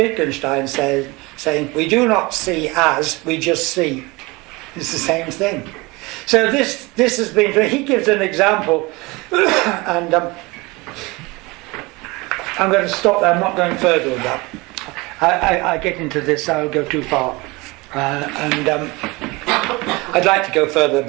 saying we do not see as, we just see. It's the same thing. So this has been, he gives an example, and I'm going to stop there. I'm not going further with that. I get into this, I'll go too far. And I'd like to go further,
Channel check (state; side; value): quieter; left; 24.1 dB